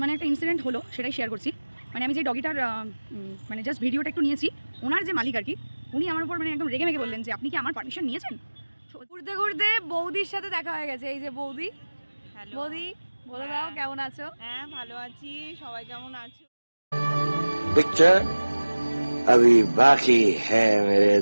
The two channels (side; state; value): both; inverted; correlation -1.00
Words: মানে একটা ইনসিডেন্ট হলো, সেটাই শেয়ার করছি। মানে আমি যে ডগিটার মানে জাস্ট ভিডিওটা একটু নিয়েছি, ওনার যে মালিক আর কি, উনি আমার উপর মানে একদম রেগে মেগে বললেন যে আপনি কি আমার পারমিশন নিয়েছেন। ঘুরতে ঘুরতে বৌদির সাথে দেখা হয়ে গেছে। এই যে বৌদি। হ্যালো বৌদি বলে দাও কেমন আছো? হ্যাঁ ভালো আছি, সবাই কেমন আছো? पिक्चर अभी बाकी है मेरे